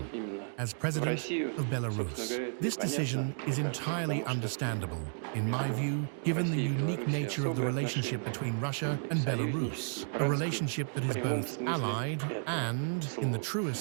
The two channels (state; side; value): silent; left; digital silence